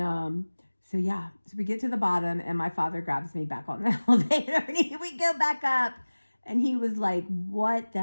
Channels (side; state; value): both; inverted; correlation -1.00